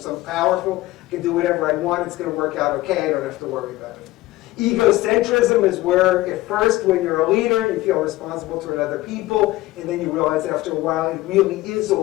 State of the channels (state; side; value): quieter; right; 17.9 dB